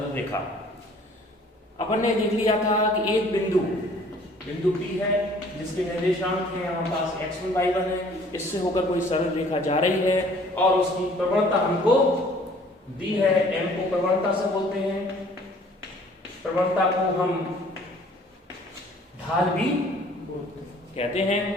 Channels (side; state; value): both; normal; correlation 0.55